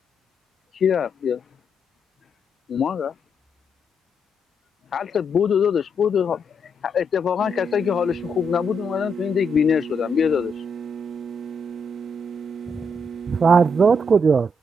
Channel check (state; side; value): normal; both; correlation 0.78